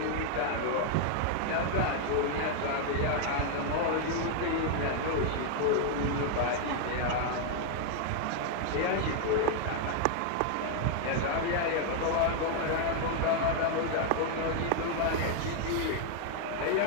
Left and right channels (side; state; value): both; different; correlation 0.00